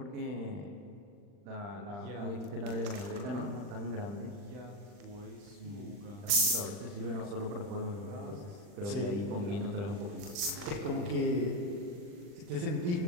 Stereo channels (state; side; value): late; left; 40 ms